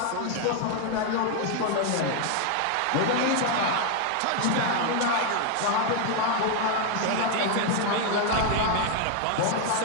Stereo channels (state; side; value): different; both; correlation 0.01